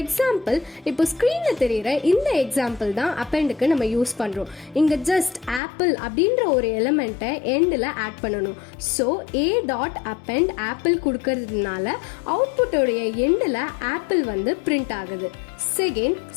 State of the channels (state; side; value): drops out; right; at 5.6 s